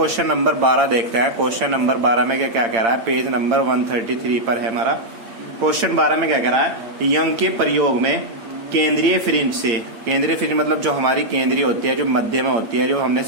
नंबर 12 देखते हैं। क्वेश्चन नंबर 12 में क्या कह रहा है? पेज नंबर 133 पर है हमारा। क्वेश्चन 12 में क्या कह रहा है? यंग के प्रयोग में केंद्रीय फ्रिंज से, केंद्रीय फ्रिंज मतलब जो हमारी केंद्रीय होती है, जो मध्य में होती है, जो हमने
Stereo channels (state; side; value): late; left; 8.8 ms